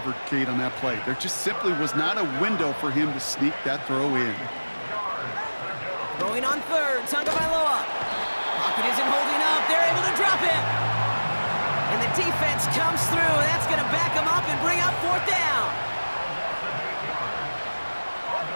Kate, on that play. There just simply was not a window for him to sneak that throw in. Throwing on third, Tagovailoa. Pocket isn't holding up. They're able to drop it. And the defense comes through. That's going to back them up and bring up 4th down.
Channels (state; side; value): inverted; both; correlation -1.00